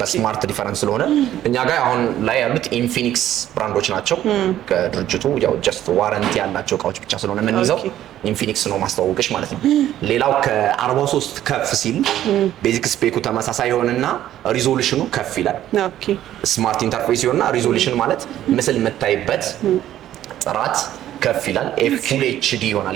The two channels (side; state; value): left; quieter; 12.3 dB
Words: በስማርት ዲፈረንስ ስለሆነ እኛ ጋር አሁን ላይ ያሉት ኢንፊኒክስ ብራንዶች ናቸው። ከድርጅቱ ያው ጀስት ዋረንቲ ያላቸው እቃዎች ብቻ ስለሆነ የምንይዘው ኢንፊኒክስ ነው ማስተዋወቅሽ ማለት ነው። ሌላው ከ43 ከፍ ሲል ቤዚክ ስፔኩ ተመሳሳይ ይሆንና ሪዞሉሽኑ ከፍ ይላል። ስማርት ኢንተርፌስ ይሆንና ሪዞሉሽን ማለት ምስል የምታይበት ጥራት ከፍ ይላል። ፉል ኤችዲ ይሆናል